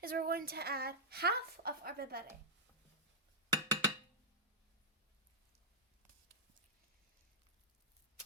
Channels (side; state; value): both; normal; correlation -0.10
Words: is we're going to add half of our Berbere.